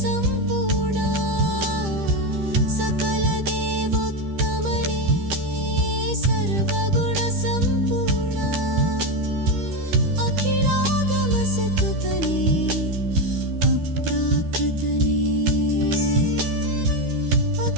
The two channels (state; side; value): late; left; 13 ms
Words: ಸಂಪೂರ್ಣ ಸಕಲ ದೇವೋತ್ತಮನೇ ಸರ್ವಗುಣ ಸಂಪೂರ್ಣ ಅಖಿಲಾಗಮ ಸತುತನೇ ಅಪ್ರಾಕೃತನೇ